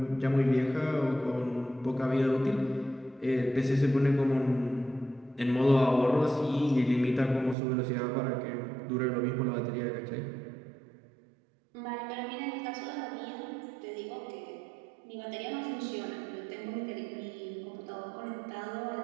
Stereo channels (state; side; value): drops out; left; at 7.6 s